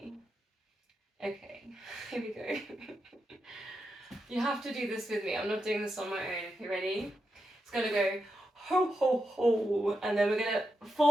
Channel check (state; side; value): normal; both; correlation 0.86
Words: Okay, here we go. You have to do this with me. I'm not doing this on my own. You ready? It's going to go ho, ho, ho. And then we're going to